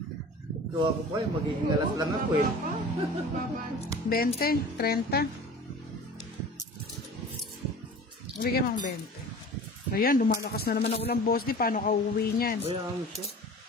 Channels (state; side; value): normal; both; correlation 0.40